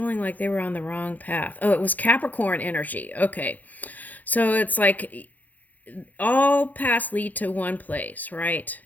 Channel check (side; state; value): right; late; 0.081 ms